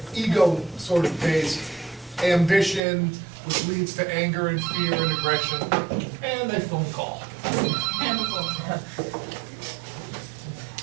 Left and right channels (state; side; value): drops out; left; at 2.8 s